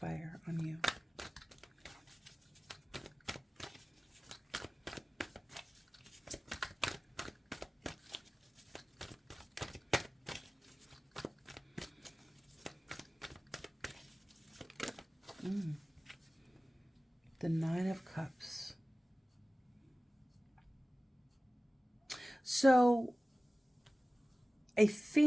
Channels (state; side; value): normal; both; correlation 0.97